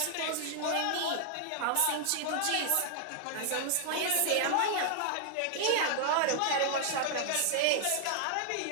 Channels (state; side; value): different; both; correlation 0.00